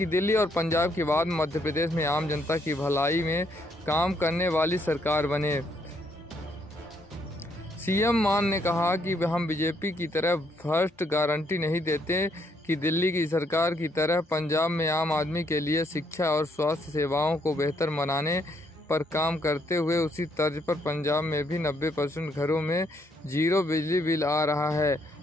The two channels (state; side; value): normal; both; correlation 0.72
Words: दिल्ली और पंजाब के बाद मध्य प्रदेश में आम जनता की भलाई में काम करने वाली सरकार बने। सीएम मान ने कहा कि हम बीजेपी की तरह फर्स्ट गारंटी नहीं देते कि दिल्ली की सरकार की तरह पंजाब में आम आदमी के लिए शिक्षा और स्वास्थ्य सेवाओं को बेहतर बनाने पर काम करते हुए उसी तर्ज पर पंजाब में भी 90% घरों में 0 बिजली बिल आ रहा है।